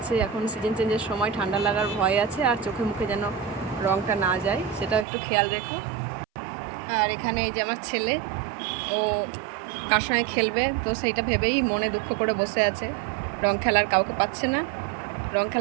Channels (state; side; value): drops out; left; at 5.1 s